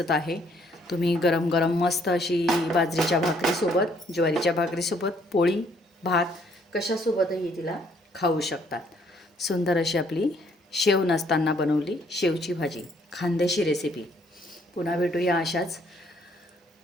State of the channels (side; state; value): both; normal; correlation 0.66